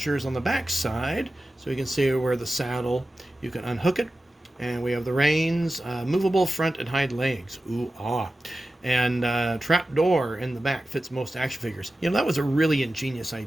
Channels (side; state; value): both; normal; correlation 0.94